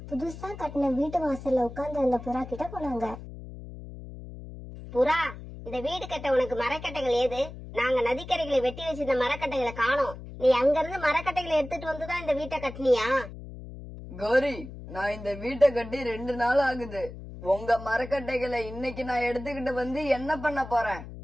புதுசா கட்டின வீட்டு வாசல்ல உட்கார்ந்து அந்த புறா கிட்ட போனாங்க. புறா, இந்த வீடு கட்ட உனக்கு மரக்கட்டைகள் ஏது? நாங்க நதிக்கரைகளை வெட்டி வச்சிருந்த மரக்கட்டைகளை காணோம். நீ அங்க இருந்து மரக்கட்டைகளை எடுத்துட்டு வந்துதான் இந்த வீட்டை கட்டினியா? கோரி, நான் இந்த வீட்டை கட்டி 2 நாள் ஆகுது. உங்க மரக்கட்டைகளை இன்னைக்கு நான் எடுத்துக்கிட்டு வந்து என்ன பண்ண போறேன்?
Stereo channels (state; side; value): noise; left; hum, 13 dB below the sound